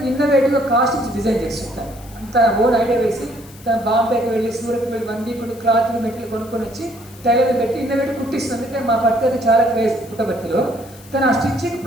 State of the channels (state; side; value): noise; left; hiss, 22 dB below the sound